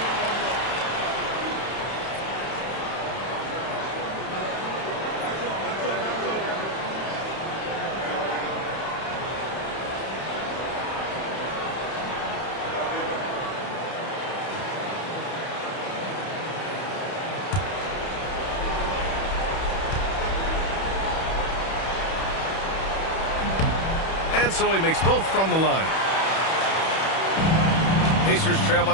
And so he makes both from the line. Pacers trail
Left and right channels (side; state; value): right; late; 31 ms